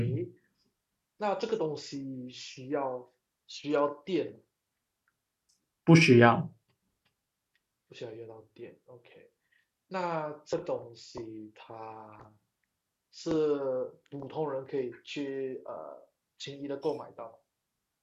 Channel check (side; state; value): both; identical; correlation 1.00